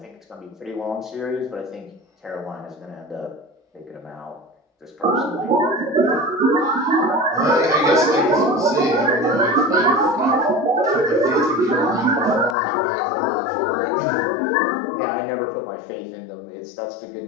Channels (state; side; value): drops out; right; at 12.6 s